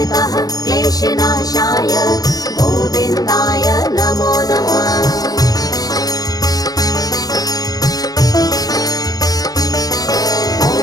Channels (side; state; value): right; late; 0.18 ms